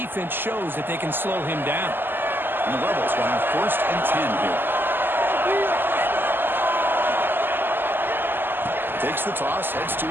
shows that they can slow him down. And the Rebels will have 1st and 10 here. Takes the toss, heads to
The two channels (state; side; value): late; left; 0.095 ms